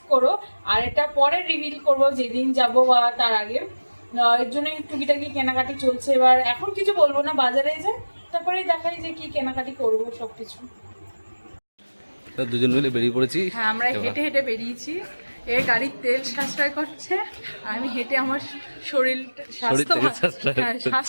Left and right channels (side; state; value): both; inverted; correlation -1.00